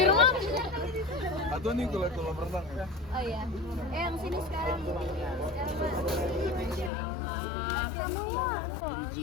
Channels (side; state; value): right; drops out; at 6.9 s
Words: rumah. Atau nih kalau berenang ya? Oh iya. Yang sini sekarang.